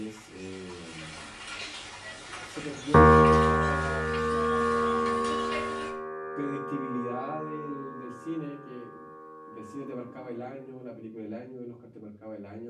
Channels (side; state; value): both; identical; correlation 1.00